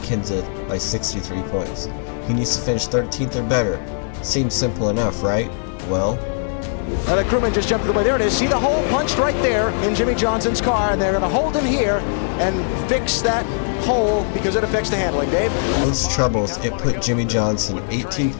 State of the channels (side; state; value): right; silent; 65 dB below the other